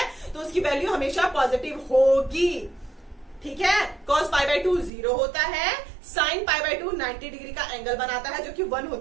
तो उसकी वैल्यू हमेशा पॉजिटिव होगी, ठीक है। cos पाई बाय 2 0 होता है, sin पाई बाय 2 90 डिग्री का एंगल बनाता है, जो कि 1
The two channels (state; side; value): drops out; left; at 4.9 s